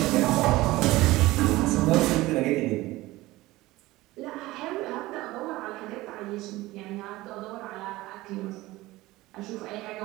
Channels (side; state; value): left; quieter; 18.7 dB